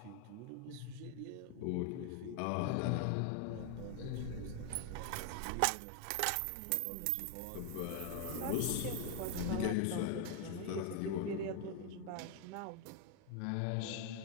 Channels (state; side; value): different; both; correlation 0.01